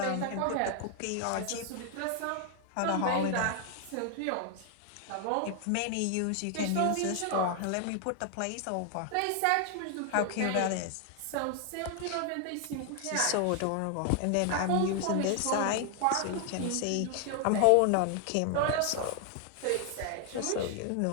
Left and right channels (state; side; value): different; both; correlation 0.00